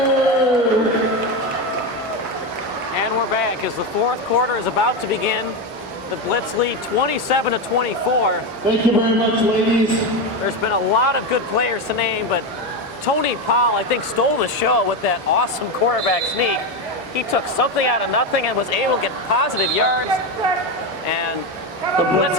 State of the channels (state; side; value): normal; both; correlation 0.14